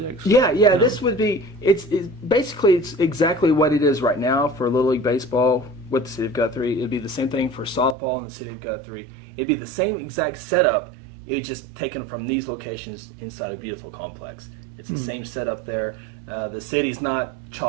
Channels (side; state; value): left; drops out; at 8.0 s